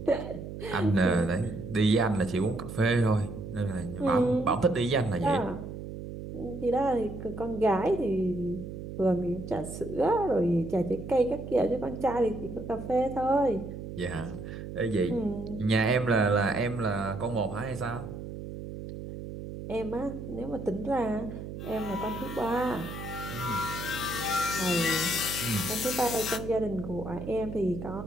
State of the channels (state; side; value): noise; right; hum, 9 dB below the sound